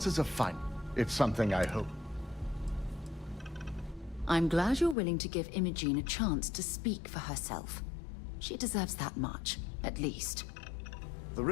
are fine. It's something I hope. I'm glad you're willing to give Imogen a chance to speak for herself. She deserves that much, at least. The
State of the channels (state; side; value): drops out; right; at 5.0 s